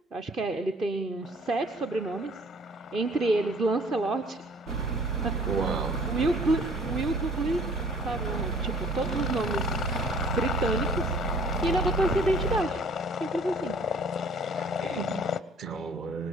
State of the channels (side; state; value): both; normal; correlation 0.54